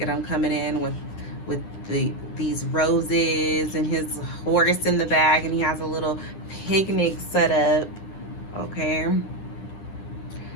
at him coming in with these roses and his horse in the back, and he has a little picnic set up. Okay,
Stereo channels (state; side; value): late; right; 9.9 ms